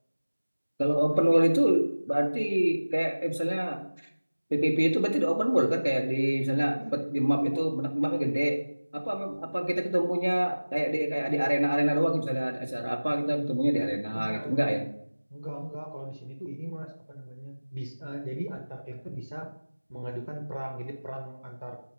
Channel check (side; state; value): both; inverted; correlation -1.00